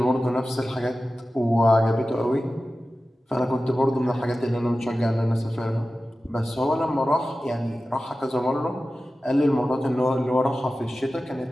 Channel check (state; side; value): normal; both; correlation 0.95